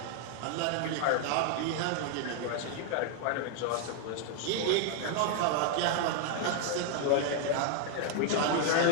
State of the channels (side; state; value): both; different; correlation 0.00